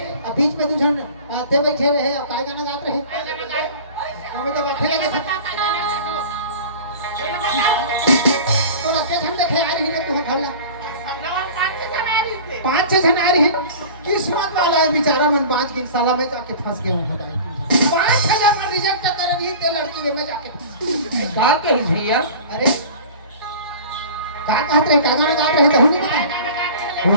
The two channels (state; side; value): inverted; both; correlation -0.39